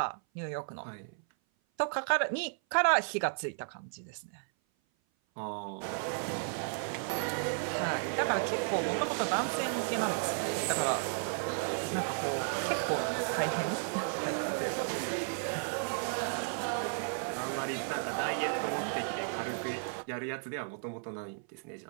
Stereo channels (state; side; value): silent; left; 55 dB below the other